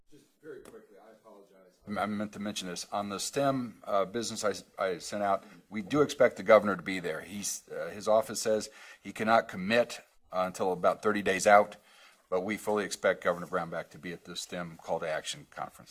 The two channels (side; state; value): both; identical; correlation 1.00